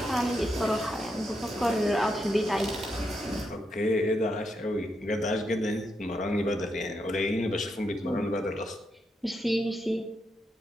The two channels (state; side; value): normal; both; correlation 0.82